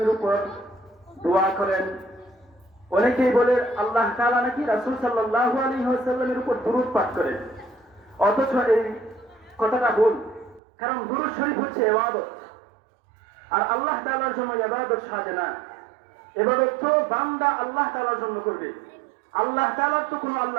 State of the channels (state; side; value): drops out; left; at 10.6 s